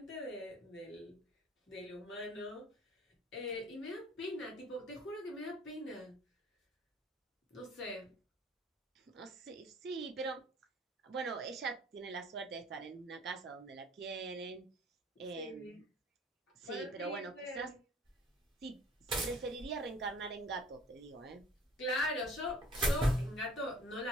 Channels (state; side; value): normal; both; correlation 0.52